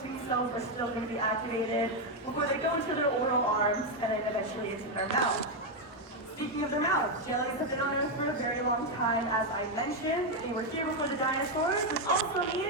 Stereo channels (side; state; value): both; normal; correlation 0.03